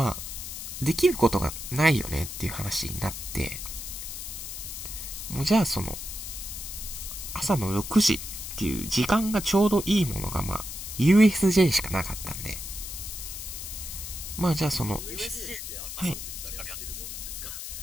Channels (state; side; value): noise; left; hiss, 8 dB below the sound